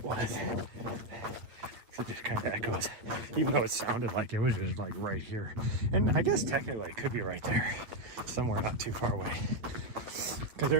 was. It just kind of echoes, even though it sounded like it was just like right here. And I guess technically it could be right there, somewhere not too far away. Because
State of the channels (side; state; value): left; late; 8.8 ms